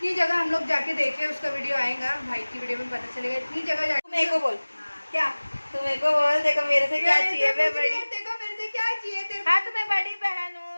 जगह हम लोग जाके देखे, उसका वीडियो आएगा भाई की वीडियो में पता चलेगा, इतनी जगह जाके। मेरे को बोल क्या, तू मेरे को बोल, देखो मेरे से क्या चाहिए, मैं बड़ी, देखो मेरे से क्या चाहिए तेरे। हाँ तो मैं बड़ी बहन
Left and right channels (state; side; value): inverted; both; correlation -1.00